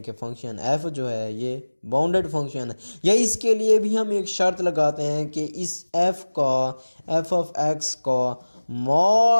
कि फंक्शन f जो है ये बाउंडेड फंक्शन है। या इसके लिए भी हम एक शर्त लगाते हैं कि इस f का f ऑफ x का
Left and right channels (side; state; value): both; inverted; correlation -1.00